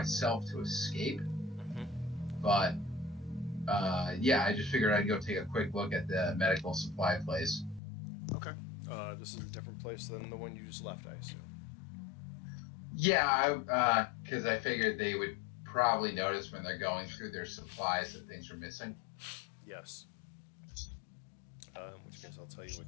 to escape. Mm-hmm. But, yeah, I just figured I'd go take a quick look at the medical supply place. Okay. This is a different place than the one you just left, I assume. Yeah, because I figured they would probably notice when they're going through their supplies that things are missing. Yes. In which case I'll tell you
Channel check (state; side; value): drops out; right; at 7.8 s